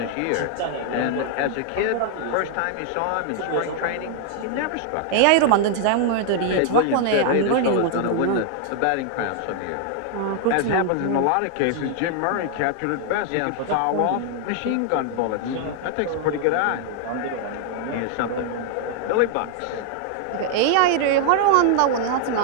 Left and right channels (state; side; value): different; both; correlation 0.00